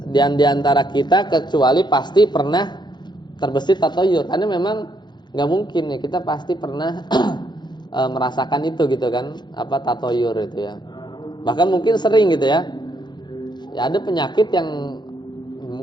di antara kita kecuali pasti pernah terbesit tatoyur. Karena memang nggak mungkin ya, kita pasti pernah merasakan itu gitu kan, apa tatoyur itu ya. Bahkan mungkin sering gitu ya. Ya ada penyakit yang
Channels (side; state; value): right; late; 0.21 ms